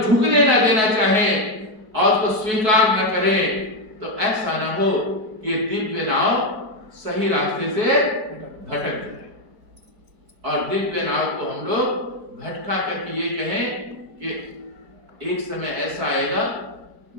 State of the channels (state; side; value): late; left; 4.6 ms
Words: न देना चाहें और उसको स्वीकार न करें, तो ऐसा ना हो कि दिव्य नाव सही रास्ते से भटक जाए और दिव्य नाव को हम लोग भटका करके ये कहें कि एक समय ऐसा आएगा